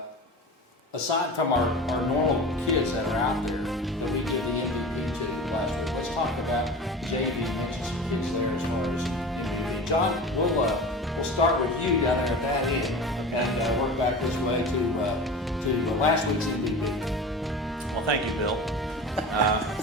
aside from our normal kids that are out there that we did the MVP to last week, let's talk about JV and mention some kids there as far as MVP. John, we'll start with you down there at that end and work back this way to last week's MVP. Well, thank you, Bill.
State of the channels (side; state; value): both; normal; correlation 0.33